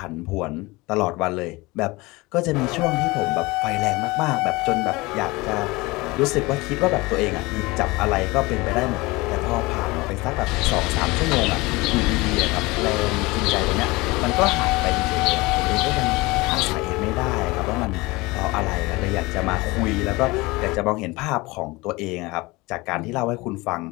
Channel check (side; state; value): right; quieter; 22.7 dB